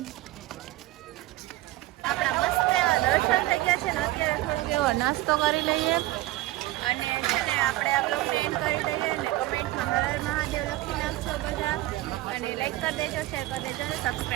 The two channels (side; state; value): left; quieter; 17.6 dB